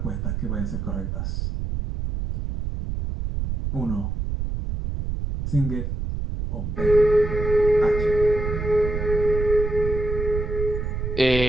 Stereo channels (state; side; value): noise; right; rumble, 3 dB below the sound